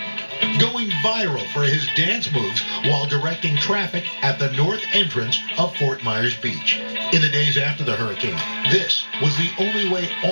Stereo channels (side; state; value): both; inverted; correlation -1.00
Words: going viral for his dance moves while directing traffic at the north entrance of Fort Myers Beach. In the days after the hurricane, this was the only way